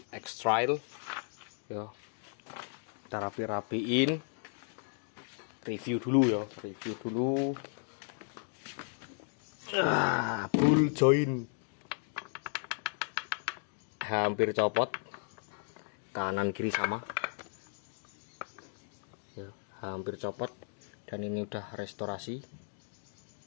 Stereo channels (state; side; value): silent; right; 54 dB below the other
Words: X-Trail ya. Kita rapi-rapiin. Review dulu. Bull joint hampir copot, kanan kiri sama ya, hampir copot. Dan ini udah restorasi,